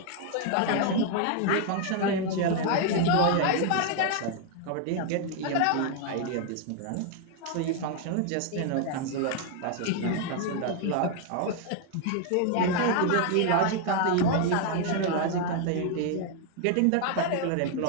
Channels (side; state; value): both; different; correlation 0.00